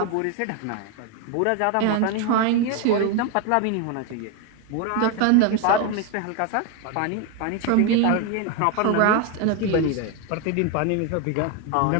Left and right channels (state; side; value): different; both; correlation 0.01